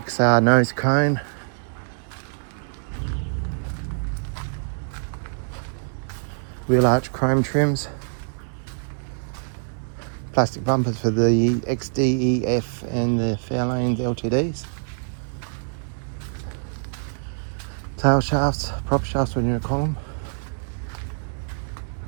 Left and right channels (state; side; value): silent; left; digital silence